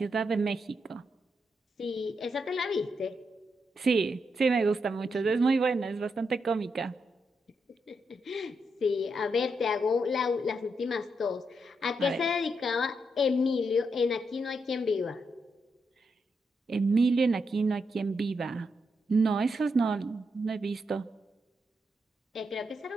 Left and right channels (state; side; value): normal; both; correlation 0.82